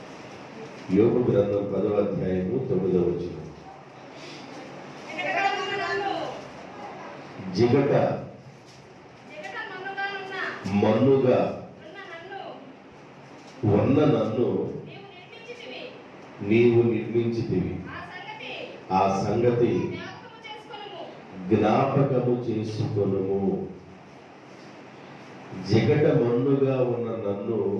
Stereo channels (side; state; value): both; identical; correlation 1.00